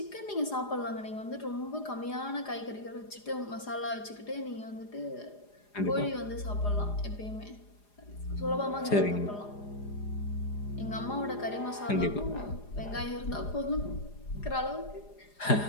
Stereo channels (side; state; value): right; late; 4.9 ms